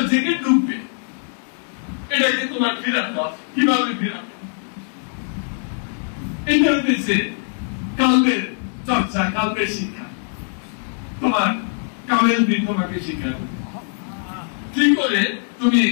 জিকির ঢুকবে, এটাকে তোমার ফিরাতে হবে। কিভাবে ফিরাবে? এটা হচ্ছে কালবের চর্চা, কালবের শিক্ষা। তোমার কালের দিন তোমাকে শিখাবে কি করে তুমি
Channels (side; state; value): right; silent; 60 dB below the other